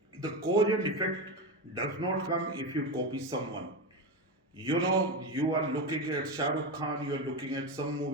the cause and effect does not come if you copy someone. You know, you are looking at Shah Rukh Khan, you are looking at some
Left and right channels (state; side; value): normal; both; correlation 0.17